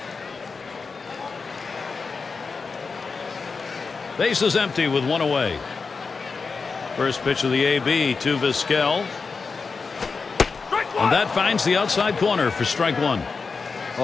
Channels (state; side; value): quieter; right; 4.7 dB